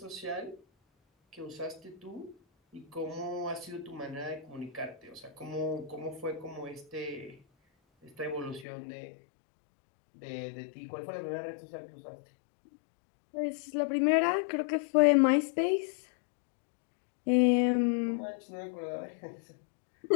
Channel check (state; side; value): drops out; right; at 8.7 s